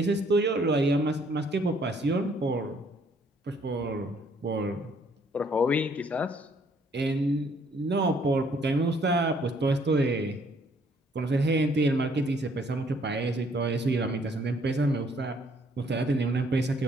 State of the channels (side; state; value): both; normal; correlation 0.64